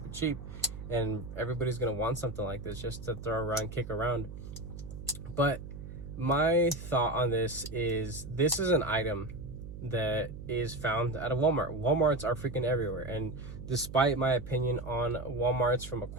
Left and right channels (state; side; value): noise; right; hum, 11 dB below the sound